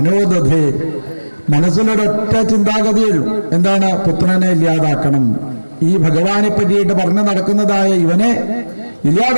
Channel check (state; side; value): inverted; both; correlation -1.00